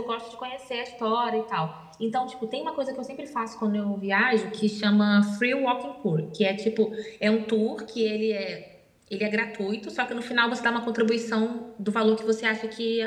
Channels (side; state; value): both; identical; correlation 1.00